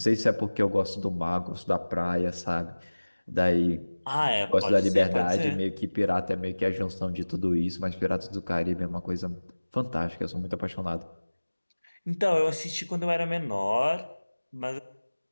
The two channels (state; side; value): inverted; both; correlation -1.00